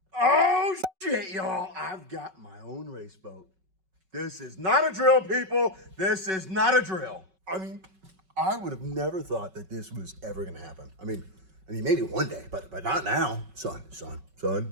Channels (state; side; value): late; left; 5.3 ms